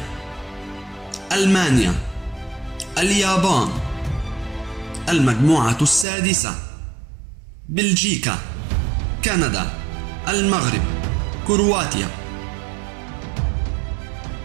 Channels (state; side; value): drops out; left; at 6.1 s